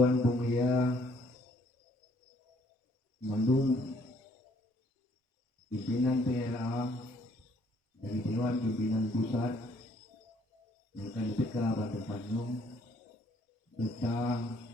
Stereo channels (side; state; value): both; normal; correlation 0.64